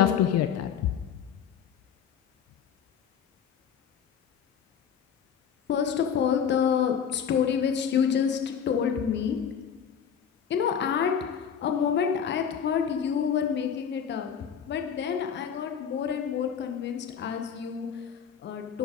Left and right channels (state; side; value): quieter; right; 7.8 dB